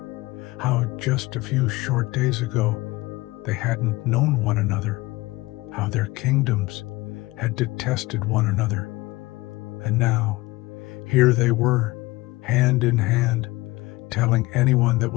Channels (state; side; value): quieter; right; 20.8 dB